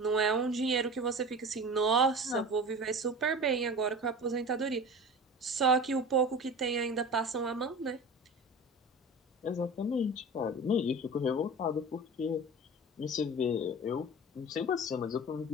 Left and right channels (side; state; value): both; normal; correlation 0.35